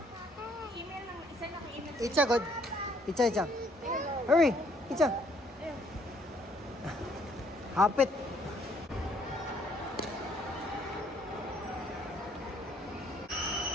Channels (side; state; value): both; normal; correlation 0.65